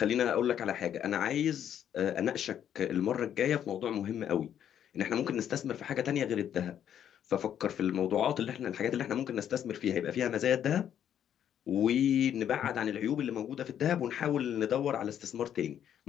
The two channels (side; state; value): right; quieter; 9.7 dB